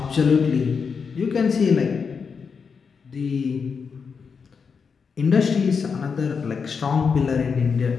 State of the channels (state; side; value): quieter; right; 5.7 dB